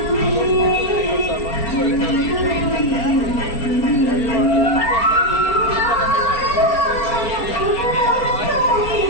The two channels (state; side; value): late; right; 4.3 ms